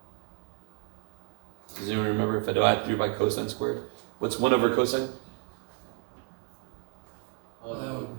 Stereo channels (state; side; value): quieter; left; 35.2 dB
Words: Does anyone remember if I divide through by cosine squared? What's 1 over cosine? oh, that would